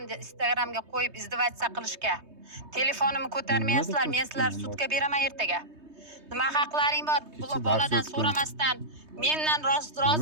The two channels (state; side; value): late; left; 3.2 ms